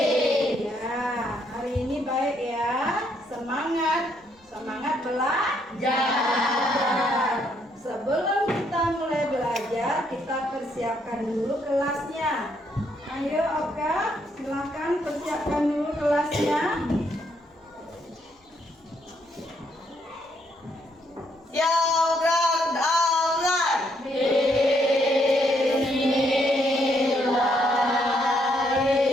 Ya, hari ini baik ya. Semangat belajar. Sebelum kita mulai belajar, kita persiapkan dulu kelasnya. Ayo Oka, silakan persiapkan dulu kelasnya. Program online.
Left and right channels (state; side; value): normal; both; correlation 0.73